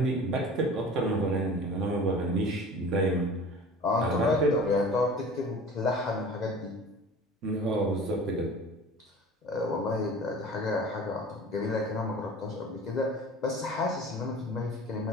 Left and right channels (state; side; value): normal; both; correlation 0.41